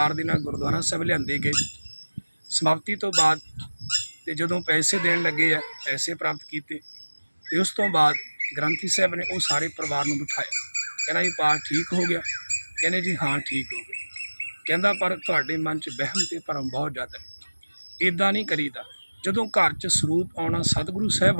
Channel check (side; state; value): both; inverted; correlation -1.00